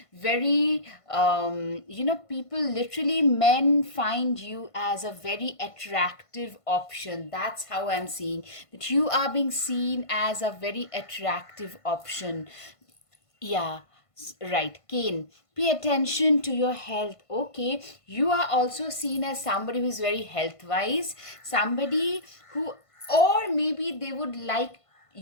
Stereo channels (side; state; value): right; late; 1.5 ms